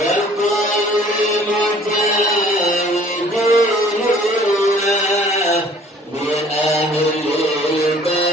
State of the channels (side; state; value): both; normal; correlation 0.53